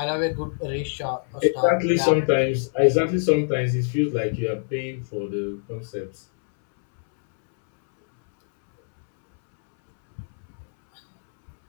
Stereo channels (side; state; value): right; silent; 63 dB below the other